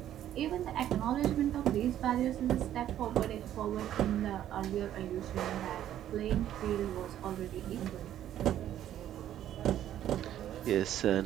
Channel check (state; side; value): quieter; left; 11.6 dB